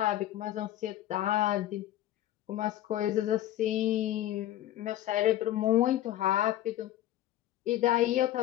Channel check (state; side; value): quieter; right; 13.4 dB